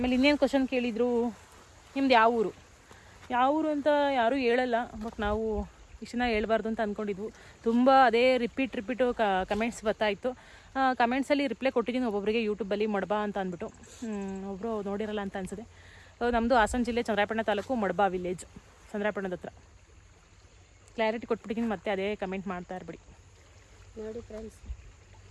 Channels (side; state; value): both; identical; correlation 1.00